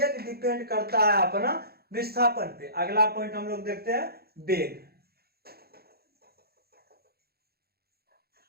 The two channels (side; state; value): left; late; 0.46 ms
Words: डिपेंड करता है अपना विस्थापन पे। अगला पॉइंट हम लोग देखते हैं, वेग।